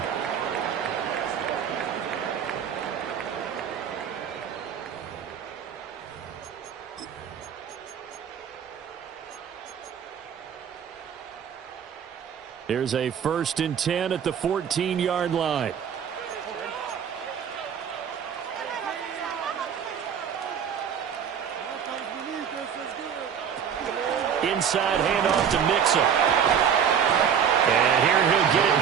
Here's a 1st and 10 at the 14-yard line. Inside handoff to Mixon. And here he'll get it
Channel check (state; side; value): quieter; left; 8.0 dB